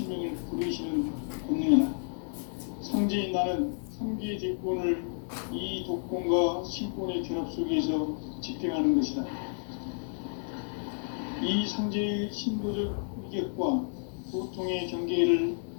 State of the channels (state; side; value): silent; right; digital silence